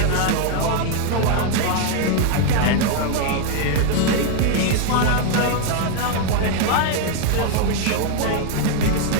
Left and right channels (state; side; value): different; both; correlation 0.00